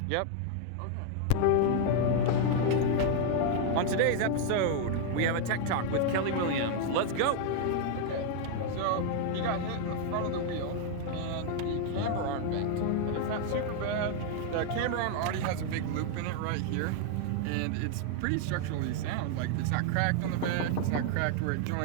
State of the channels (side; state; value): both; different; correlation 0.00